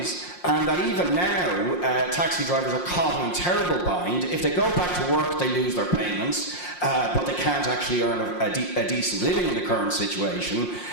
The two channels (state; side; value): late; right; 5.6 ms